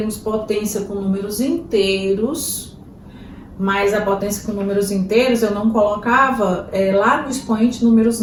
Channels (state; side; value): identical; both; correlation 1.00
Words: potência com números inteiros, mas a potência com números inteiros eu não colocava lá no expoente números